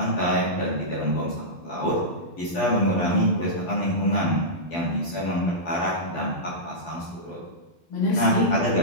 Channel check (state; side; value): late; right; 12 ms